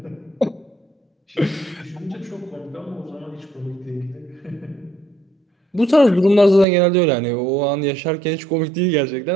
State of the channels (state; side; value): drops out; left; at 6.7 s